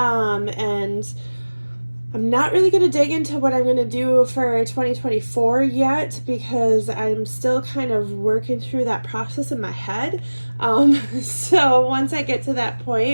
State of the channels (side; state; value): both; inverted; correlation -1.00